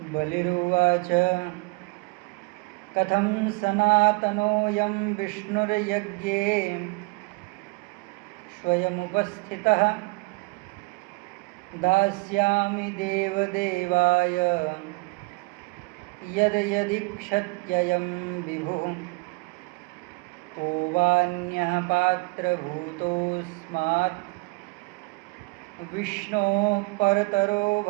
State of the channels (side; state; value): left; quieter; 27.3 dB